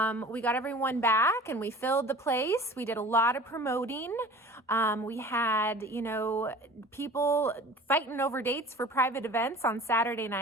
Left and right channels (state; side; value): normal; both; correlation 0.42